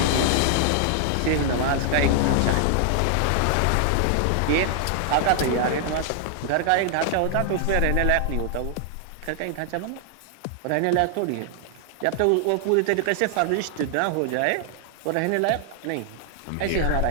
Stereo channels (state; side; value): different; both; correlation 0.00